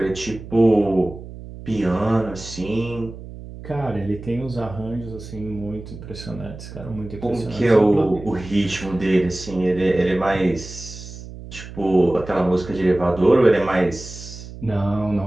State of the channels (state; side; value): noise; right; hum, 13 dB below the sound